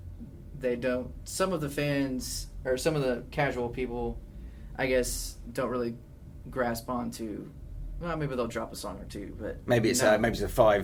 some of the fans or some of the casual people, I guess, don't really grasp onto, well, maybe they'll drop a song or two, but maybe it's a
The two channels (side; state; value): both; identical; correlation 1.00